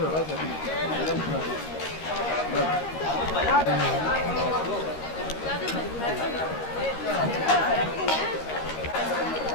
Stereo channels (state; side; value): late; right; 13 ms